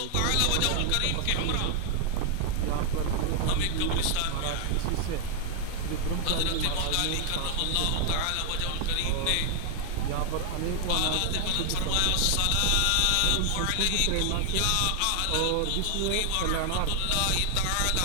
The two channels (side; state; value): both; different; correlation 0.00